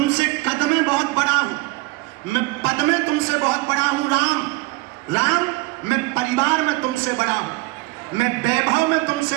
कद में बहुत बड़ा हूं, मैं पद में तुमसे बहुत बड़ा हूं। राम राम मैं परिवार में तुमसे बड़ा हूं, मैं वैभव में तुमसे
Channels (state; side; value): quieter; left; 22.1 dB